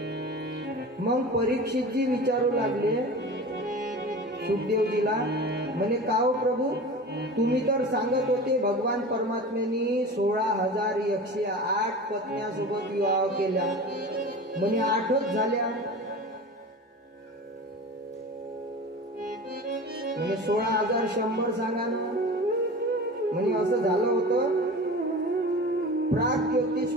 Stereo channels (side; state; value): both; normal; correlation 0.34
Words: मग परीक्षितजी विचारू लागले सुखदेवजीला, म्हणे का हो प्रभू, तुम्ही तर सांगत होते भगवान परमात्म्यांनी 16,108 पत्न्यासोबत विवाह केला, म्हणे 8च झाल्या. म्हणे 16,100 सांगा ना. म्हणे असं झालं होतं,